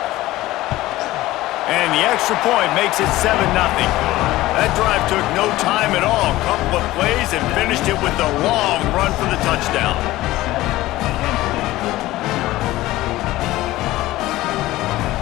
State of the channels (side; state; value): right; quieter; 17.1 dB